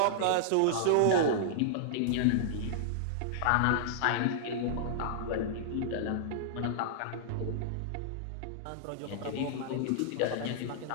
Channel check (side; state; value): both; different; correlation -0.02